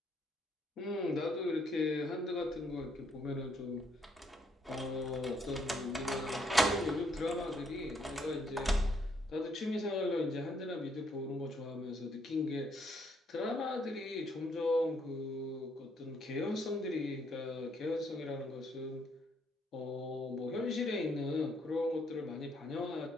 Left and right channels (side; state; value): both; normal; correlation 0.71